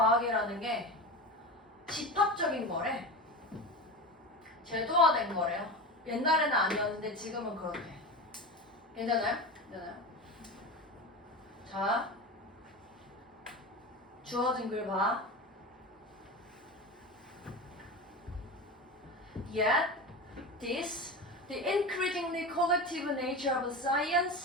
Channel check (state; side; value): normal; both; correlation 0.26